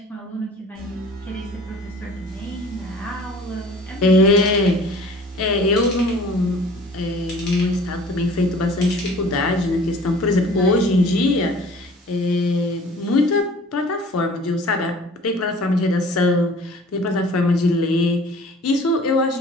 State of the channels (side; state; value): both; normal; correlation 0.48